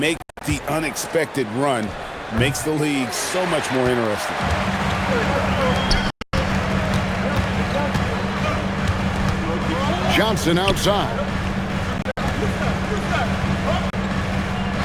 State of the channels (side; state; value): both; identical; correlation 1.00